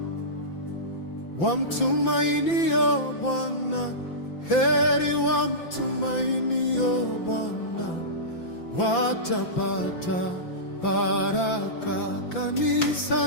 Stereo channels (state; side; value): late; right; 5.9 ms